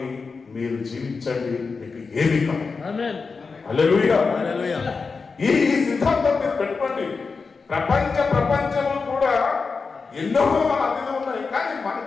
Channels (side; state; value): right; quieter; 4.7 dB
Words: మీరు జీవించండి, మీకు ఏమి కాదు. హల్లెలూయా. ఈ సిద్ధాంతం మీరు పెట్టుకోండి. ప్రపంచంలో కూడా ఎన్నో అదిలు ఉన్నాయి, కానీ